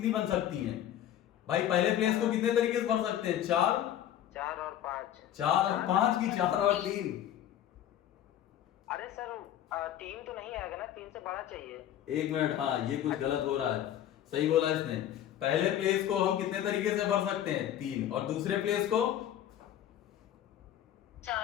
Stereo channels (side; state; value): right; quieter; 11.3 dB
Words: बन सकती हैं? भाई पहले प्लेस को कितने तरीके से भर सकते हैं? 4 4 और 5। 4 और 5 की 4 और 3? अरे सर 3 तो नहीं आएगा ना, 3 से बड़ा चाहिए। 1 मिनट, हाँ ये कुछ गलत हो रहा है। सही बोला इसने। पहले प्लेस को हम कितने तरीके से भर सकते हैं? 3। और दूसरे प्लेस को